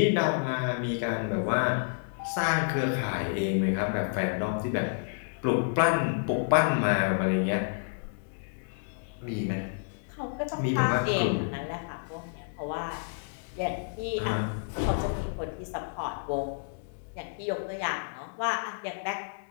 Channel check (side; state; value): right; silent; digital silence